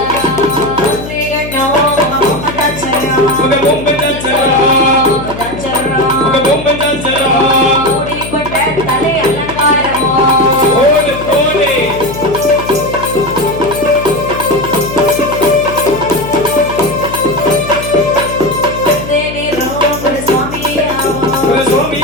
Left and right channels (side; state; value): left; noise; hum, 10 dB below the sound